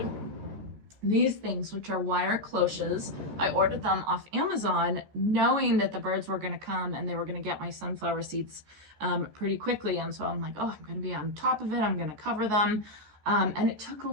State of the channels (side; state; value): left; late; 14 ms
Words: these things, which are wire cloches. I ordered them off Amazon, knowing that the birds were going to come and they were going to get my sunflower seeds pretty quickly. And so I'm like, oh, I'm going to be on top of it. I'm going to cover them. And it took a